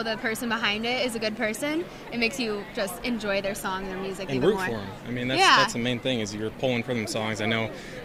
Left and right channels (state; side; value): identical; both; correlation 1.00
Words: the person behind it is a good person, it makes you just enjoy their song, their music And even root more. for them. I mean, Yeah. that's the main thing is you're pulling for them songs. I know